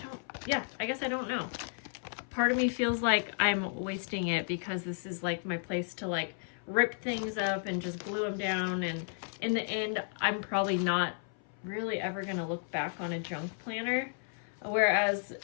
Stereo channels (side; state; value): right; silent; 56 dB below the other